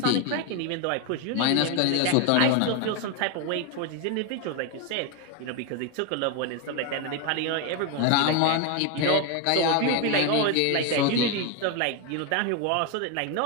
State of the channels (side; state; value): both; different; correlation 0.02